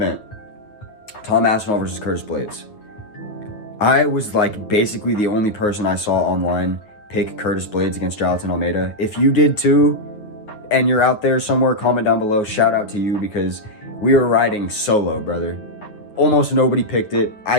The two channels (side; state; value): right; late; 9.5 ms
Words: Tom Aspinall versus Curtis Blades. I was like basically the only person I saw online pick Curtis Blades against Jonathan Almeida. If you did too, and you're out there somewhere, comment down below. Shout out to you because we were riding solo, brother. Almost nobody picked it. I